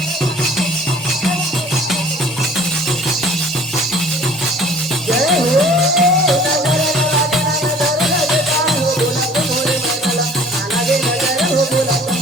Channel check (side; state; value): both; normal; correlation 0.50